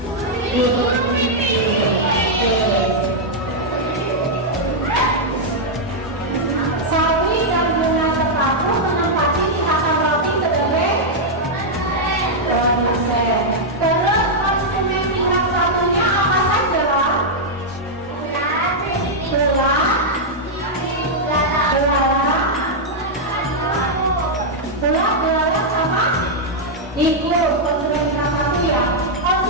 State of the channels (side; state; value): both; normal; correlation -0.05